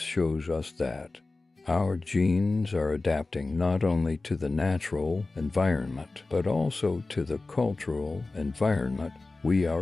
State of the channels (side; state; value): right; quieter; 3.4 dB